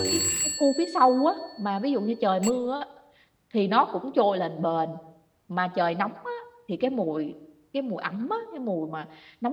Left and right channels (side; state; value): both; identical; correlation 1.00